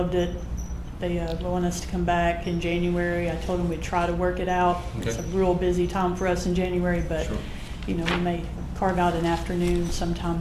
it. They want us to come back in January. I told them we'd try to work it out. It's a Okay. real busy time for us in January, but Sure. we may carve out an afternoon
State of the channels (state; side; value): identical; both; correlation 1.00